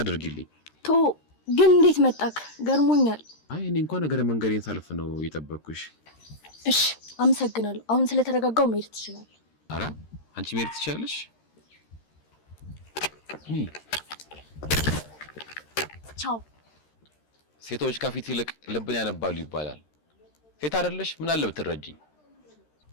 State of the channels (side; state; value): right; late; 13 ms